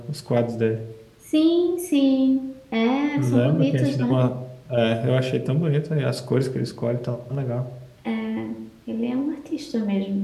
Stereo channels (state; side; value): identical; both; correlation 1.00